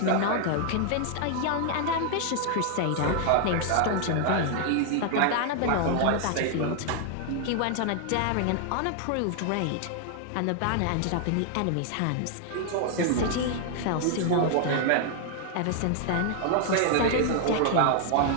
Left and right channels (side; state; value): both; different; correlation 0.00